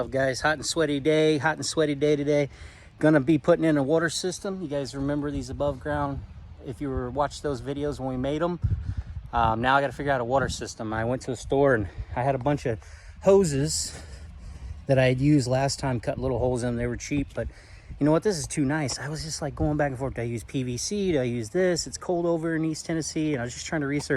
up, guys? Hot and sweaty day today. Gonna be putting in a water system. You guys remember these above ground, if you were watched those videos when we made them. Now I gotta figure out a water system. I went to the store and I had a bunch of hoses that I had used last time, cut little holes in them. They were cheap, but you know what, this is too nice. I was just like going back and forth. Do I use PVC? Do I use this? It's cold over in East Tennessee, and I was just trying to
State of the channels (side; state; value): both; identical; correlation 1.00